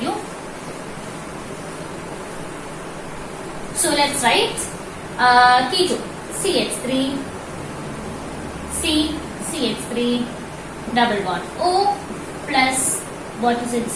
you. So, let's write ketone. CH3, CH3, double bond O plus, what is it,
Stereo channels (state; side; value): identical; both; correlation 1.00